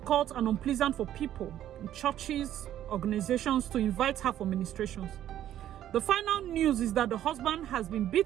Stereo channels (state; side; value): quieter; left; 11.7 dB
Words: and unpleasant for people in churches, organizations to invite her for ministrations. The final news is that the husband has been